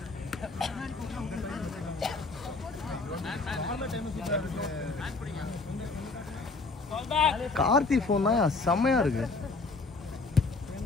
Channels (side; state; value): right; quieter; 3.8 dB